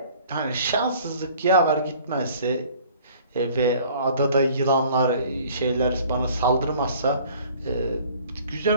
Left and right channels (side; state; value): both; inverted; correlation -0.52